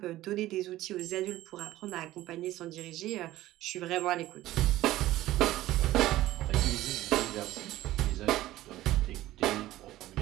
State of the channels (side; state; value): left; quieter; 15.6 dB